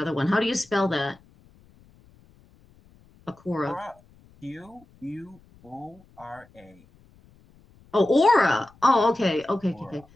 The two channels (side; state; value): left; noise; rumble, 28 dB below the sound